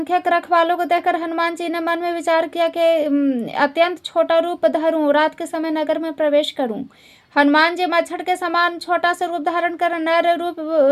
रखवालों को देखकर हनुमान जी ने मन में विचार किया कि अत्यंत छोटा रूप धरूं, रात के समय नगर में प्रवेश करूं। हनुमान जी मच्छर के समान छोटा सा रूप धारण कर नर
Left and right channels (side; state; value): both; identical; correlation 1.00